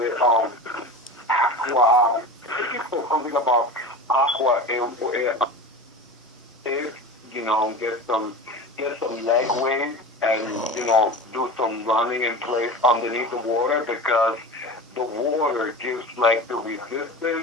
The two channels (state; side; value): normal; both; correlation 0.30